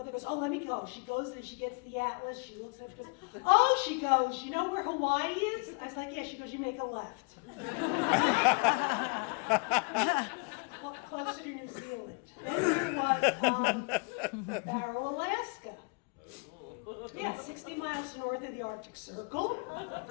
goes, oh, let me go. She goes and she gets the atlas. She looks at it. She goes, oh, she goes, you know where Hawaii is? I was like, yeah. She goes, you make a left. Closer to New Zealand. Then we was Barrow, Alaska. Yeah, 60 miles north of the Arctic Circle.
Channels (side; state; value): right; quieter; 34.9 dB